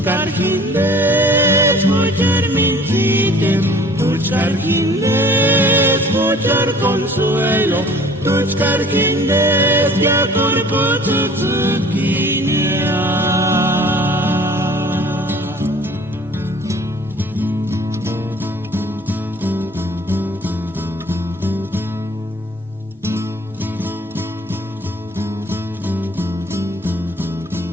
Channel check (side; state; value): both; normal; correlation 0.50